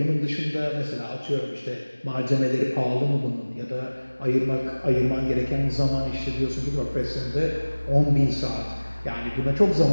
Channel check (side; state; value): both; inverted; correlation -1.00